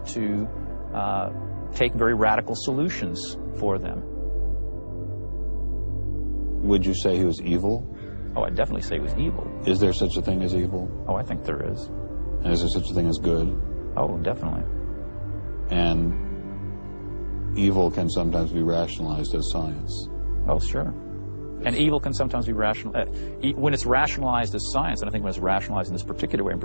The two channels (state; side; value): inverted; both; correlation -1.00